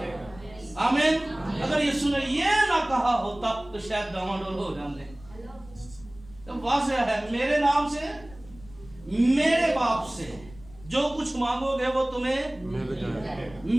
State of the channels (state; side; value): noise; left; rumble, 21 dB below the sound